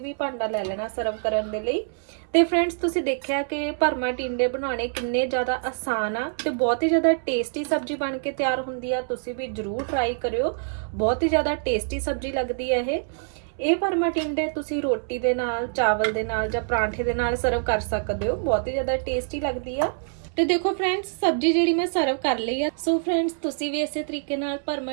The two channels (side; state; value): left; silent; 62 dB below the other